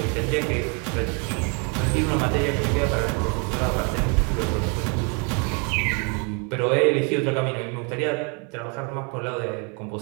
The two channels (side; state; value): left; quieter; 35.4 dB